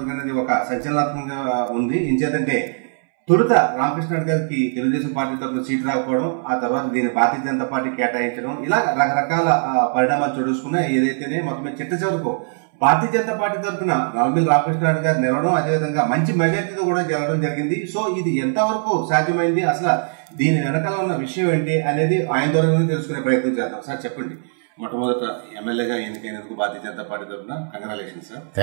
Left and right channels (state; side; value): silent; left; 65 dB below the other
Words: అనేది ఒక సంచలనాత్మకంగా ఉంది. ఇంచేతంటే తొలుత రామకృష్ణారెడ్డి గారికి తెలుగుదేశం పార్టీ తరఫున సీటు రాకపోవడం, ఆ తర్వాత దీన్ని భారతీయ జనతా పార్టీ కేటాయించడం, ఇలా రకరకాల పరిణామాలు చూసుకున్నాయి. ఏదైతేనే మొత్తం చిట్ట చివరకు భారతీయ జనతా పార్టీ తరఫున నల్లమిల్లి రామకృష్ణారెడ్డి గారు నిలవడం, అదేవిధంగా మంచి మెజార్టీతో కూడా జరగడం జరిగింది. సో ఇది ఎంతవరకు సాధ్యమైంది, అసలు దీని వెనకాల ఉన్న విషయం ఏంటి అనేది ఆయన ద్వారా తెలుసుకునే ప్రయత్నం చేద్దాం. సార్ చెప్పండి, మొట్టమొదట ఎమ్మెల్యేగా ఎన్నికైనందుకు భారతీయ జనతా పార్టీ తరఫున congratulation sir.